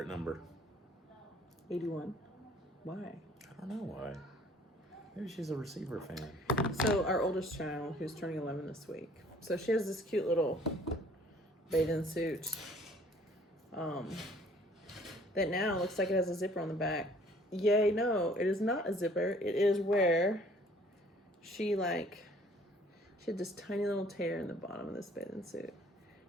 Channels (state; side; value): normal; both; correlation 0.56